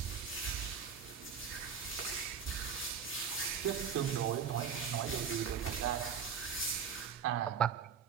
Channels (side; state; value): left; quieter; 7.1 dB